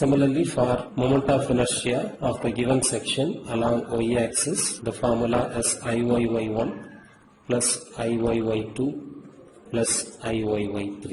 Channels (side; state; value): both; identical; correlation 1.00